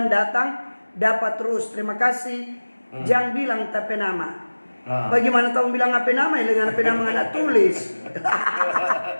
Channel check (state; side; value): inverted; both; correlation -1.00